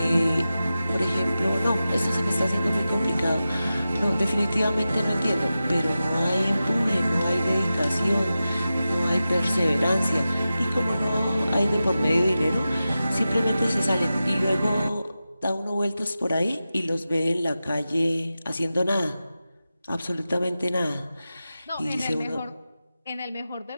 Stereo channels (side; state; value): both; inverted; correlation -0.93